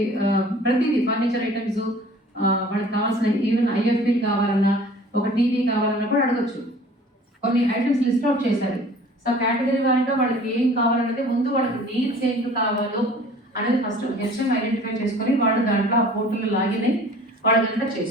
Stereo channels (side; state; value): both; normal; correlation 0.48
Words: ప్రతిదీ ఫర్నిచర్ ఐటమ్స్ వాళ్ళకి కావాల్సిన ఈవెన్ ఐఎఫ్పీ కావాలన్నా, ఒక టీవీ కావాలన్నా కూడా అడగచ్చు. కొన్ని ఐటమ్స్ లిస్ట్ అవుట్ చేశారు. సో కేటగిరీ వారిగా వాళ్ళకి ఏం కావాలనేది ముందు వాళ్ళకి నీడ్స్ ఏం కావాలో అనేది ఫస్ట్ హెచ్ఎం ఐడెంటిఫై చేసుకొని వాళ్ళు దాంట్లో ఆ పోర్టల్లో లాగిన్ అయ్యి వాళ్ళంతా